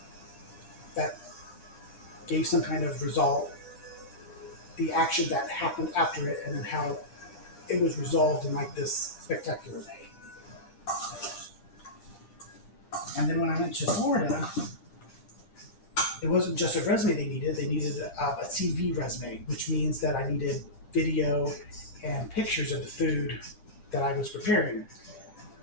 that gave some kind of result, the action that happened after it, and then how it was resolved in like this spectacular way. And then when I went to Florida, it wasn't just a resume they needed a CV resume, which means that I needed video and pictures of the food that I was preparing.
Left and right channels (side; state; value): right; late; 10 ms